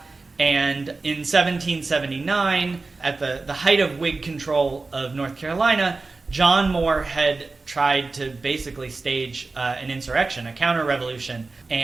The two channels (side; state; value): left; quieter; 3.7 dB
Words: And in 1779, at the height of Whig control of North Carolina, John Moore had tried to basically stage an insurrection, a counter-revolution,